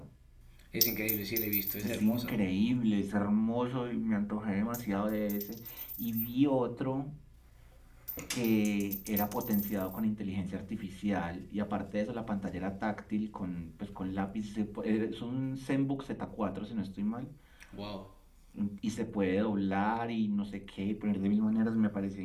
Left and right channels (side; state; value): both; identical; correlation 1.00